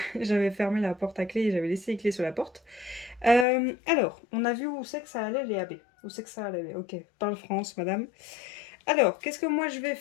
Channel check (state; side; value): drops out; right; at 3.5 s